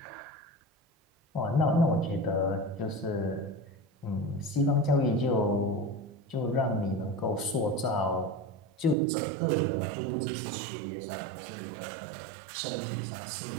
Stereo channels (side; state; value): left; drops out; at 9.0 s